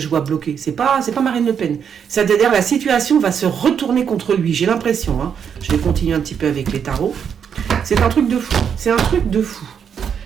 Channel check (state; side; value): quieter; left; 7.6 dB